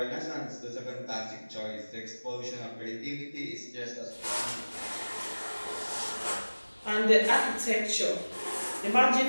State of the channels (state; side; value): inverted; both; correlation -1.00